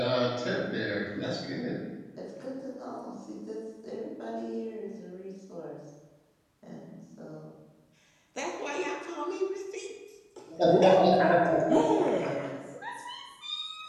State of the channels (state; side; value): identical; both; correlation 1.00